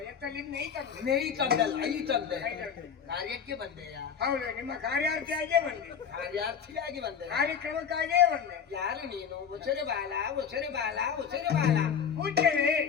ಎತ್ತಲಿಂದ ಐತಂದೆ. ನೈತಂದಲ್ಲ, ಐತಂದೆ. ಕಾರ್ಯಕ್ಕೆ ಬಂದೆಯ? ಹೌದು, ನಿಮ್ಮ ಕಾರ್ಯಾರ್ಥಿಯಾಗೇ ಬಂದೆ. ಕಾರ್ಯಾರ್ಥಿಯಾಗಿ ಬಂದೆ, ಕಾರ್ಯಕ್ರಮಕ್ಕಾಗೇ ಬಂದೆ. ಯಾರು ನೀನು? ಉಸರೆ ಬಾಲ, ಉಸರೆ ಬಾಲ, ಉಸರೆ ಬಾಲ. ಪೂಜ್ಯರೇ,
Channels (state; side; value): quieter; right; 7.2 dB